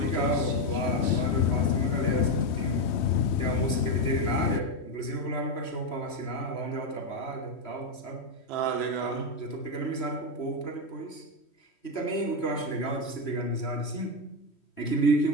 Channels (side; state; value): right; late; 3.1 ms